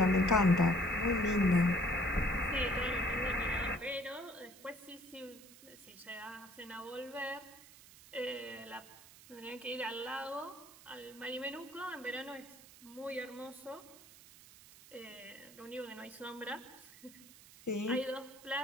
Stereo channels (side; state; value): right; noise; hiss, 20 dB below the sound